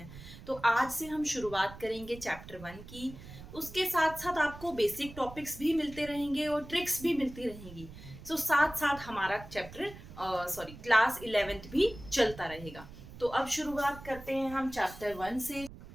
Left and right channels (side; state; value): right; noise; rumble, 15 dB below the sound